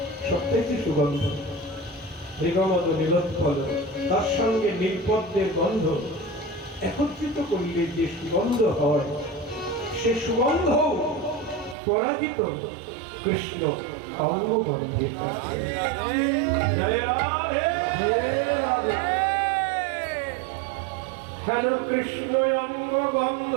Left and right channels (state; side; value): drops out; left; at 11.8 s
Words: সবচাইতে সুগন্ধ। মৃগমদ নীলোৎপল, তার সঙ্গে নীলপদ্মের গন্ধ, একত্রিত করলে যে সুগন্ধ হয়, সে সুগন্ধ পরাজিত কৃষ্ণ অঙ্গ বন্ধের কাছে। জয় রাধে। হেন কৃষ্ণ অঙ্গ বন্ধ,